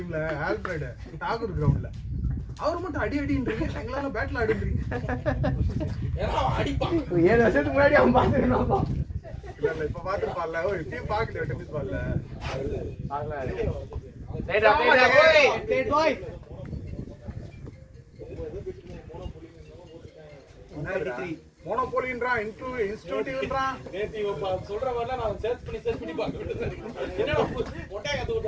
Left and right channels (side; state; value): both; identical; correlation 1.00